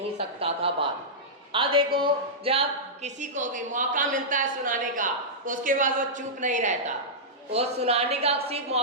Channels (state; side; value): normal; both; correlation -0.12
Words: सकता था बात। अब देखो जब किसी को भी मौका मिलता है सुनाने का उसके बाद वो चुप नहीं रहता। वो सुनाने का सिर्फ